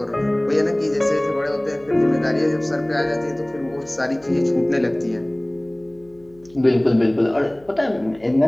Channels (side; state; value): left; noise; hum, 28 dB below the sound